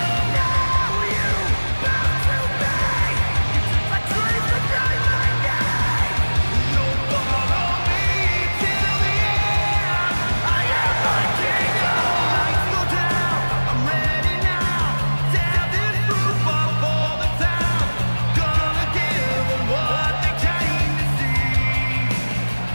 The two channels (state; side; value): inverted; both; correlation -1.00